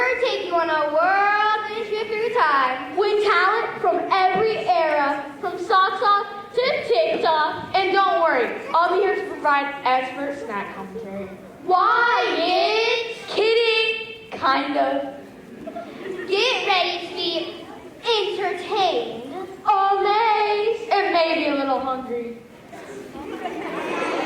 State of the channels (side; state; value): both; identical; correlation 1.00